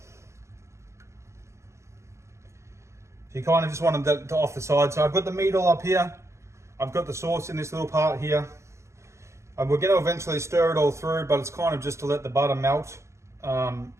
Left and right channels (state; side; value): late; left; 0.14 ms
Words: So you kind of just want them to off the side. So I've got the meat all up here. I've got the sauce in this little part here. And we're going to eventually stir it all through, but it's kind of just to let the butter melt and